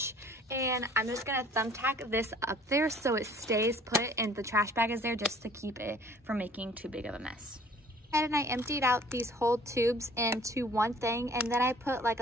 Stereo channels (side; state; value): both; normal; correlation 0.53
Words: And I'm just gonna thumbtack this up there so it stays put, and the trash bag is there just to keep it from making too big of a mess. And I emptied out these whole tubes into one thing, and then I put like